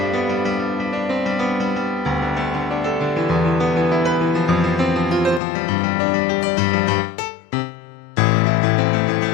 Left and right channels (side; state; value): right; drops out; at 5.4 s